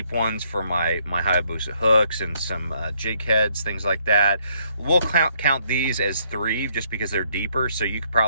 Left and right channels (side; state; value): both; inverted; correlation -0.71